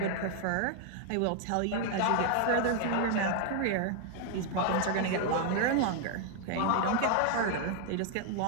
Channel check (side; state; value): both; different; correlation 0.00